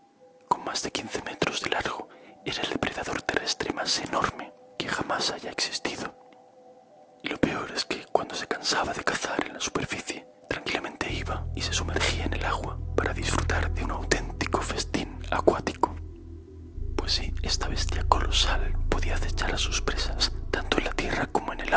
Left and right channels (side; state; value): both; identical; correlation 1.00